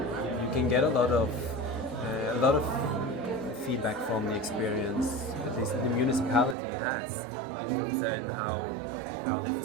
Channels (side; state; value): left; drops out; at 6.6 s